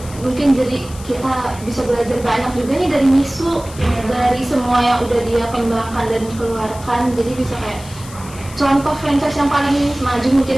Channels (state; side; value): noise; left; hiss, 18 dB below the sound